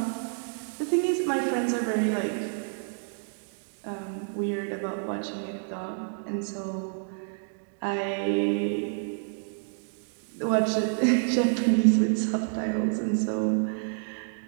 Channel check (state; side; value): silent; left; digital silence